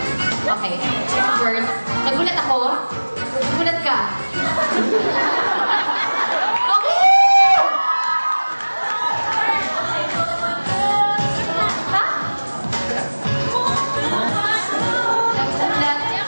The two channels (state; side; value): inverted; both; correlation -1.00